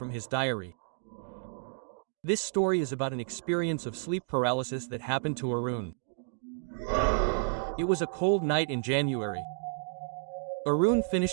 his diary. This story is about an experience of sleep paralysis that happened to Arun. It was a cold night in January. Arun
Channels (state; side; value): silent; left; 56 dB below the other